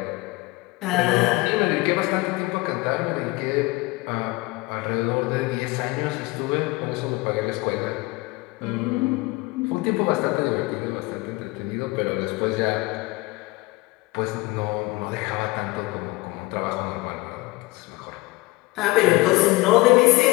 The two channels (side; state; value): right; quieter; 22.0 dB